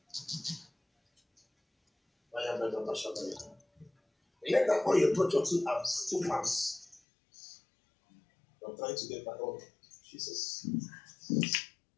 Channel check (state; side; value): drops out; right; at 7.0 s